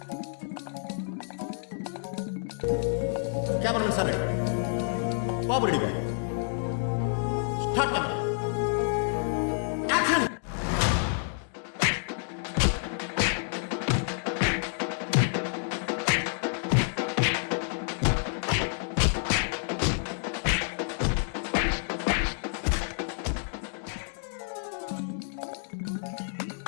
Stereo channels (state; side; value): silent; right; digital silence